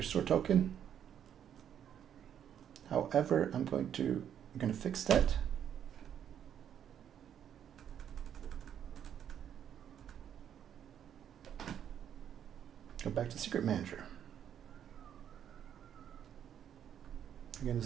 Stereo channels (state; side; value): quieter; left; 9.3 dB